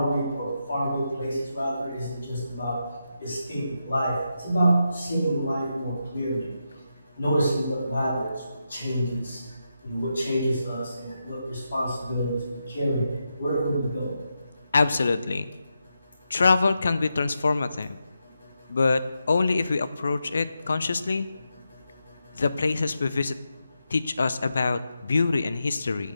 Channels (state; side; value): inverted; both; correlation -0.86